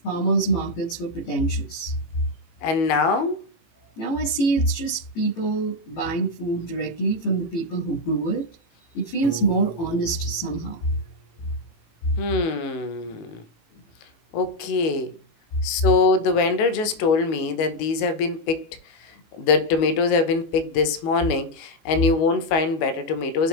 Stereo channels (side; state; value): right; late; 19 ms